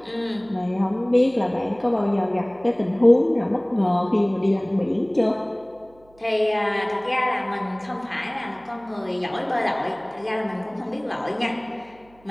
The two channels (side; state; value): right; noise; hum, 29 dB below the sound